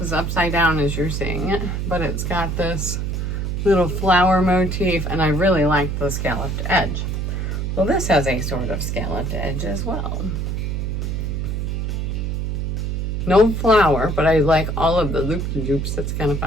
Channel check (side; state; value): right; noise; hum, 1 dB below the sound